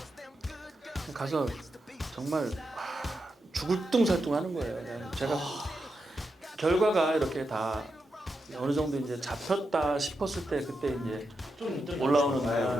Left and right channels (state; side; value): normal; both; correlation 0.86